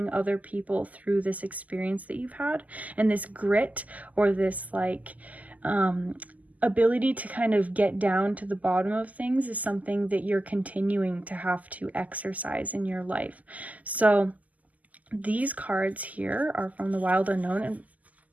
other people through this experience that you've had. And this grit, or this like ability to kind of get down to the bottom of things, is something that you're continuing to have to exercise in your life. So these cards here are from the Wild Unknown, and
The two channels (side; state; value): left; late; 0.077 ms